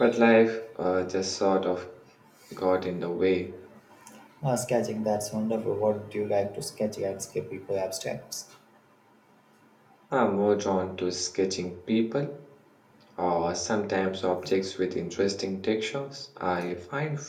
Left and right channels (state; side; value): identical; both; correlation 1.00